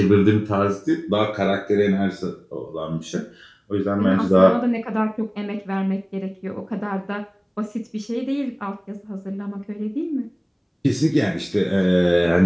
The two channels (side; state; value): both; identical; correlation 1.00